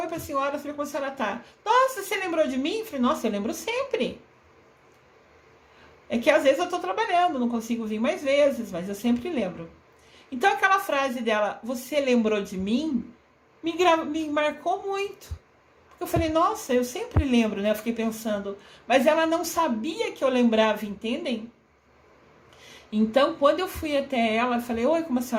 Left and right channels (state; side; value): identical; both; correlation 1.00